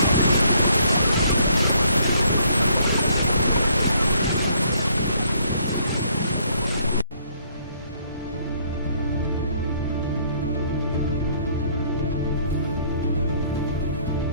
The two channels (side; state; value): both; inverted; correlation -0.65